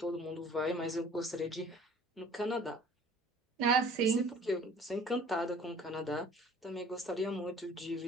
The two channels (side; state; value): both; normal; correlation 0.51